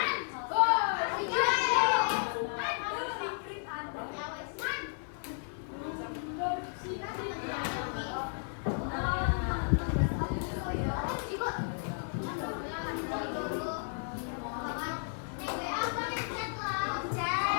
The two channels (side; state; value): right; silent; 56 dB below the other